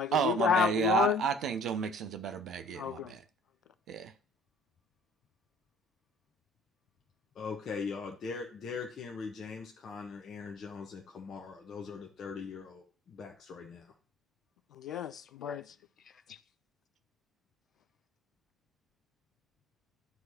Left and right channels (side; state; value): both; normal; correlation 0.51